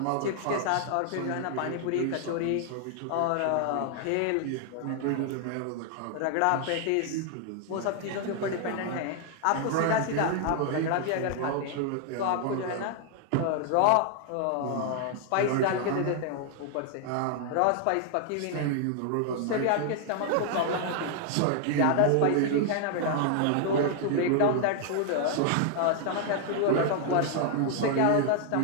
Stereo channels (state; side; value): different; both; correlation 0.00